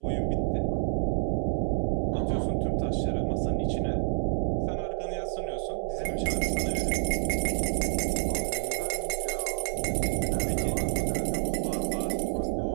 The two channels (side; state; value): left; silent; 59 dB below the other